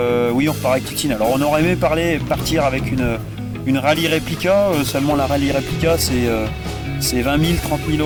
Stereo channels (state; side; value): identical; both; correlation 1.00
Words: oui, on repart avec Titine. Alors, on aurait aimé partir avec une rallye réplica, seulement la rallye réplica c'est 20 000, 30 000